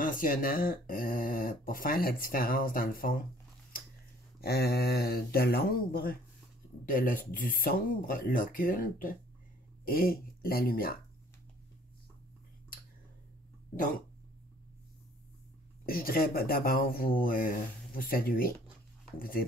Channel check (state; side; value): normal; both; correlation 0.57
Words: pour faire la différence dans le fond, de l'ombre, du sombre, l'occulte et la lumière. Donc, je voudrais d'abord vous saluer, vous dire